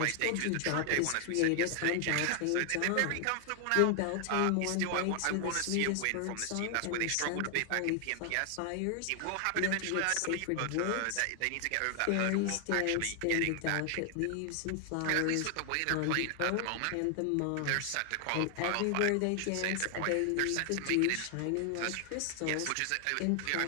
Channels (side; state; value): both; different; correlation 0.00